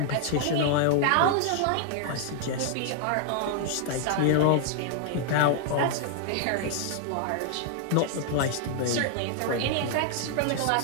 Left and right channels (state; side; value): different; both; correlation 0.00